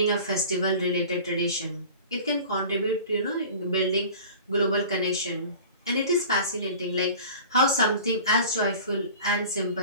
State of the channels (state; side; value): inverted; both; correlation -0.41